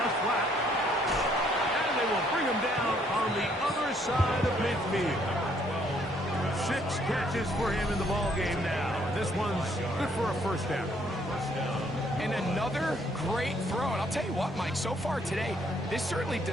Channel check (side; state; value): both; normal; correlation 0.67